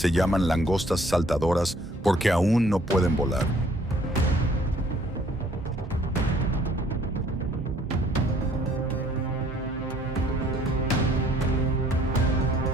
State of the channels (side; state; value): both; normal; correlation 0.60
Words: llaman langostas saltadoras porque aún no pueden volar.